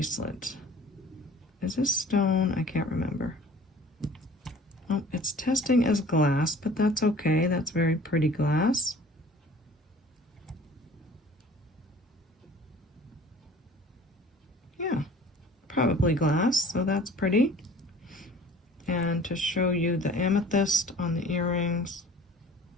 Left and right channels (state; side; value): normal; both; correlation 0.48